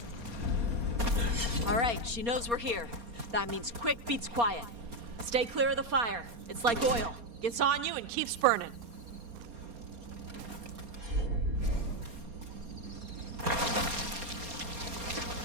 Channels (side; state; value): left; late; 4.3 ms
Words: All right, she knows we're here. That means quick beats quiet. Stay clear of the fire. It's like oil. Gets on you and keeps burning.